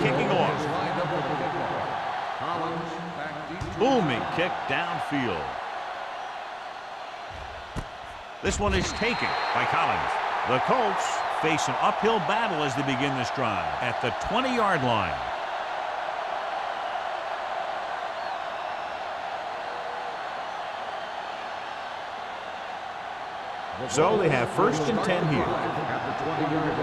kicking Jacksonville off. is lined up for the kickoff. Collins back deep to Booming return. kick downfield. This one is taken by Collins. The Colts face an uphill battle as they begin this drive at the 20-yard line. So they have 1st and 10 here. At the 20-yard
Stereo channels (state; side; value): identical; both; correlation 1.00